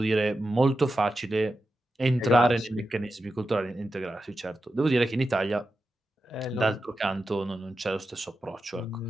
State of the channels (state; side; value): normal; both; correlation 0.90